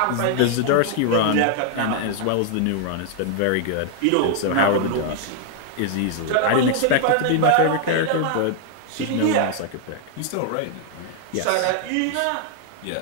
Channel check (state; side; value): different; both; correlation 0.00